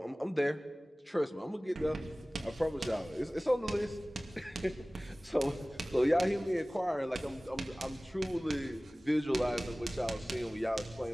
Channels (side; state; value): both; normal; correlation 0.98